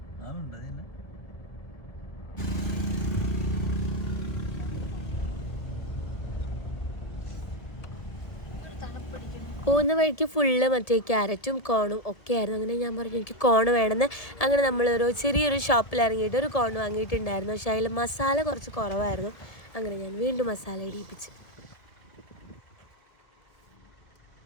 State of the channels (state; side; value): late; right; 1.7 ms